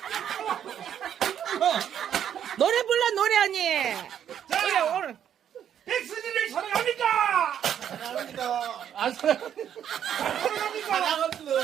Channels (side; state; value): left; quieter; 9.5 dB